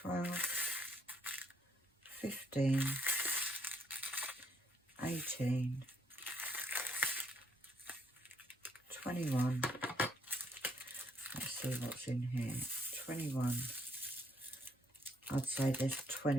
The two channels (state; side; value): normal; both; correlation 0.70